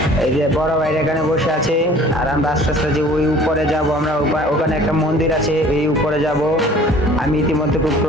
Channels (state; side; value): normal; both; correlation 0.49